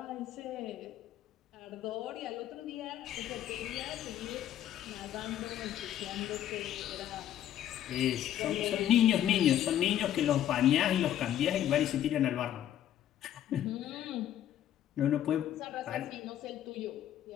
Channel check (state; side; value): quieter; right; 11.4 dB